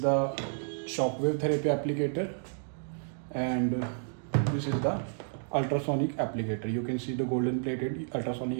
the shockwave therapy applicator, and this is the ultrasonic applicator. You can see the golden plated ultrasonic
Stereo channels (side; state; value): left; silent; digital silence